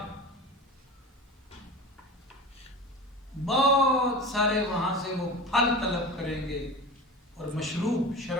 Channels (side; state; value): both; normal; correlation 0.32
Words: بہت سارے وہاں سے وہ پھل طلب کریں گے اور مشروب،